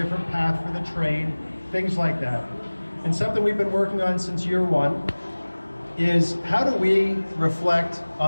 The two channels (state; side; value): inverted; both; correlation -1.00